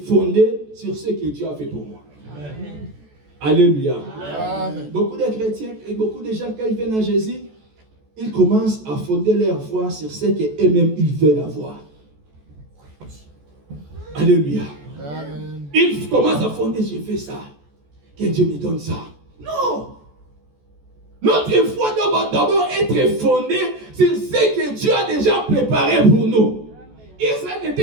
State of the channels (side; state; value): left; late; 14 ms